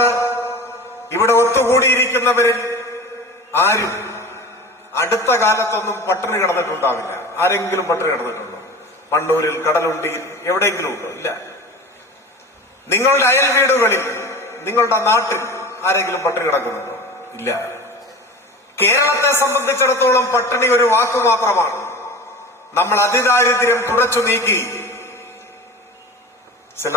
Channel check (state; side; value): normal; both; correlation 0.34